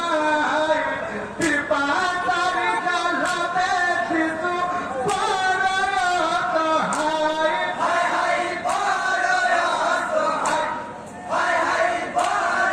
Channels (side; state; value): both; identical; correlation 1.00